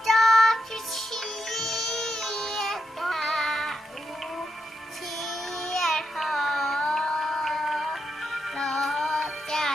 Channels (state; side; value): normal; both; correlation 0.84